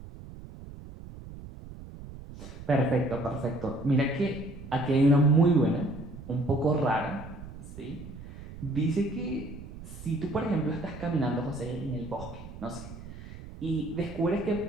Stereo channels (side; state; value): right; noise; rumble, 14 dB below the sound